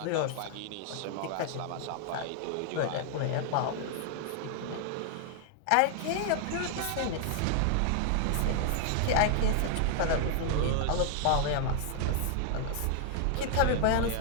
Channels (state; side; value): different; both; correlation 0.00